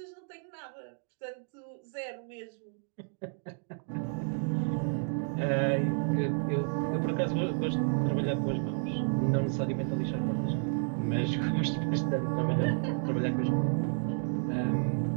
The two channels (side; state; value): left; silent; digital silence